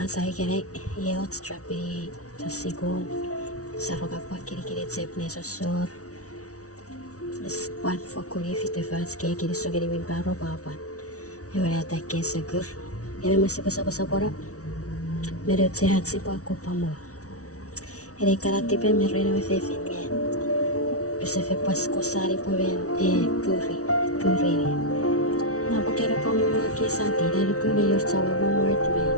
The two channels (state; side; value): late; right; 0.66 ms